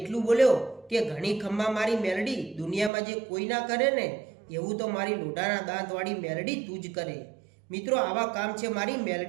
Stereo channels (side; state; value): left; drops out; at 2.9 s